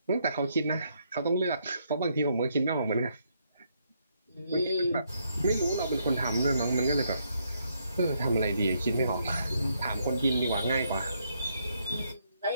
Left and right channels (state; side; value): inverted; both; correlation -0.75